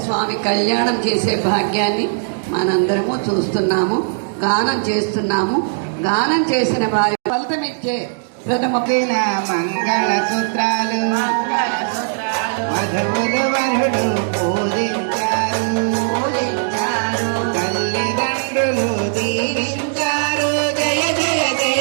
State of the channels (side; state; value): left; silent; digital silence